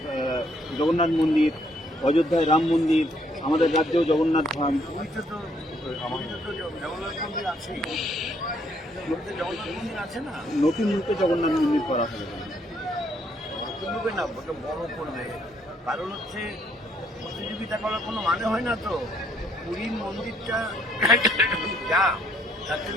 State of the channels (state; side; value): normal; both; correlation 0.68